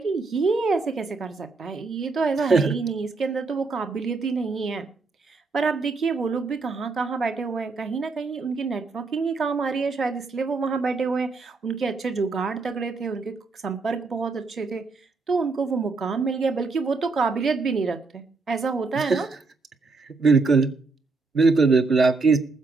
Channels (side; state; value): left; quieter; 4.0 dB